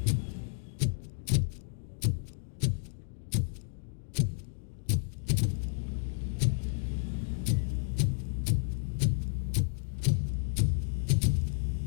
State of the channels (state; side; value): silent; right; digital silence